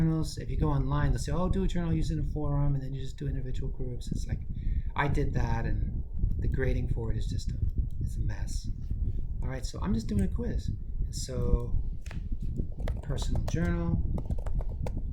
if you go online, they'll say, oh, do a journal using a forum, and then you just do individual groups. It's like, I did that, and the grading for it is just it's a mess. All right, so I'm just doing a quiz. So personal journal,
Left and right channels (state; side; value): identical; both; correlation 1.00